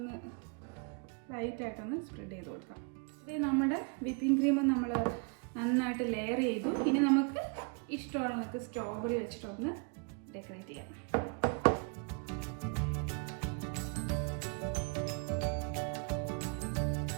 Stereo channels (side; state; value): left; quieter; 35.8 dB